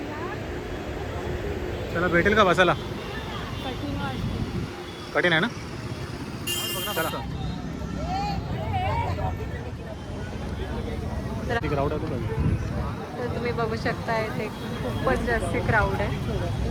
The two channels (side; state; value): both; identical; correlation 1.00